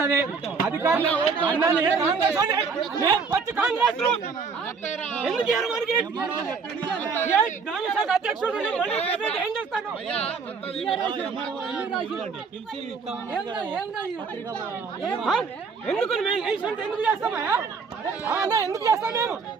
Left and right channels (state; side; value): quieter; left; 5.2 dB